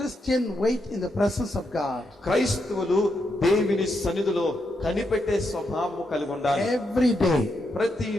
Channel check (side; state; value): both; normal; correlation 0.81